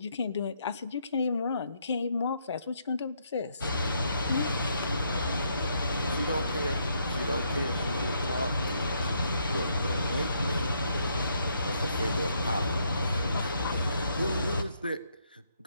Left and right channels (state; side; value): inverted; both; correlation -0.73